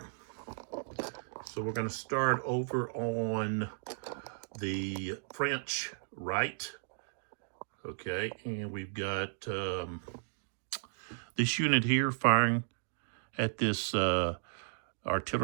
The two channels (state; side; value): silent; left; digital silence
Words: So we're going to start over on the French right. Okay, and we've got this unit here firing at this